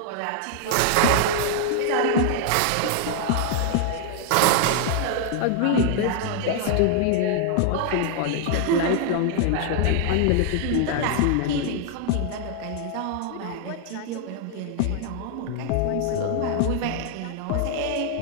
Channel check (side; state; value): both; different; correlation 0.00